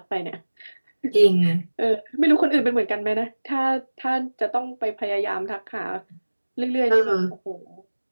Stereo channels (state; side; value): inverted; both; correlation -1.00